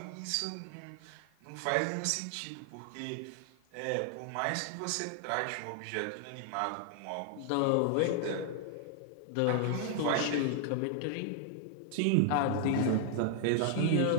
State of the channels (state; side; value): different; both; correlation 0.00